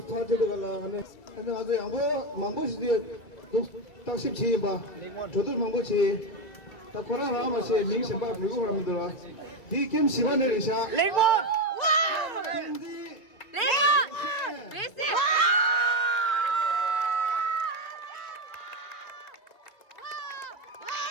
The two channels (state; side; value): late; right; 2.0 ms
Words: thay cho được là anh tôi anh mang gì tôi tác xếp chi mà tôi mang chi ta có ra mà sẽ mình xem bao nhiêu làm được đi kiếm sĩ quan này sao 레몬!